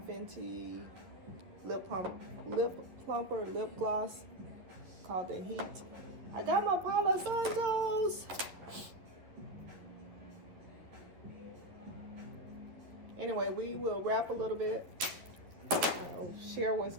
lip plumper lip gloss called the Heat. I got my Palo Santos. Anyway, we will wrap a little bit. I'll share what's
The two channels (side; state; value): left; late; 11 ms